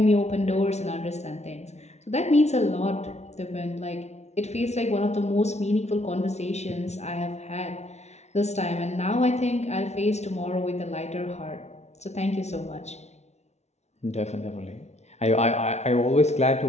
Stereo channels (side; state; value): right; late; 0.32 ms